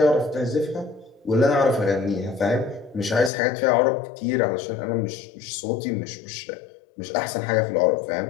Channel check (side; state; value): right; drops out; at 3.3 s